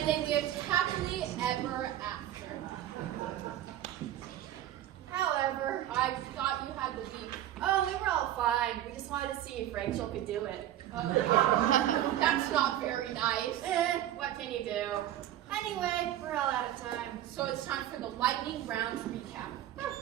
they lived happily ever after. However, I thought you had the beef. oh, we were all fine. We just wanted to see if Rachel could do it. That's not very nice. What can you do? Anyway, we're all out of time. So it's time for the lightning round recap.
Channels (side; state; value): left; quieter; 12.5 dB